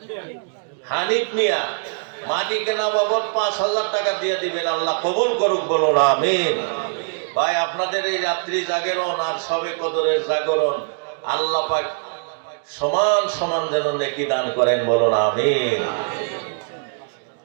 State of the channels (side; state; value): left; silent; digital silence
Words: হানিফ মিয়া, মাটি কেনা বাবদ 5,000 টাকা দিয়ে দিবেন। আল্লাহ কবুল করুক, বলুন আমিন। ভাই আপনাদের এই রাত্রি জাগরণ আর শবে কদরের জাগরণ আল্লাহ পাক সমান সমান যেন নেকি দান করেন, বলুন আমিন।